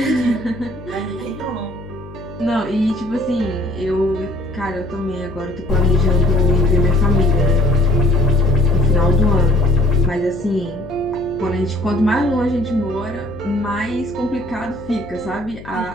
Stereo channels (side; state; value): left; noise; hum, 16 dB below the sound